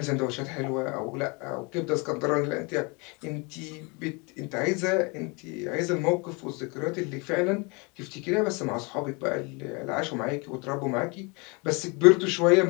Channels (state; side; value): quieter; right; 29.7 dB